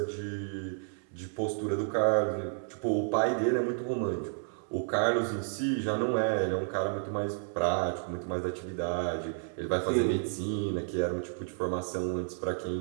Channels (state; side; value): silent; left; 57 dB below the other